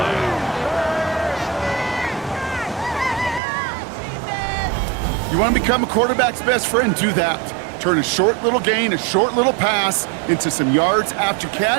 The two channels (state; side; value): drops out; left; at 3.4 s